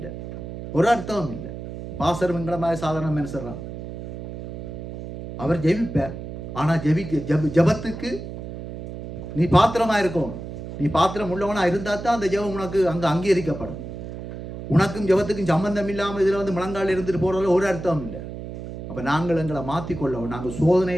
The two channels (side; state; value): right; noise; hum, 10 dB below the sound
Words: ஒரு அர்த்தமும் இல்லை. பாசர் எங்களை மாதிரி சாதாரண மனுஷன் அவர் ஜெபிப்பார். ஆனால் ஜெபத்துக்கு நீ பாத்திரமாக இருக்கணும். நீ பாத்திரம் உள்ளவனாக இருந்தால் தான் அந்த ஜெபம் உனக்கு அங்கே அங்கீகரிக்கப்படும். உனக்கும் ஜெபத்துக்கும் சம்பந்தம் இல்லாமல் இதில் வந்து முழங்கால் இருந்துட்டு போகிறதுல ஒரு அர்த்தமும் இல்லை. அப்போ நாங்கள் எங்களை மாற்றிக்கொள்ளவும், நாங்கள்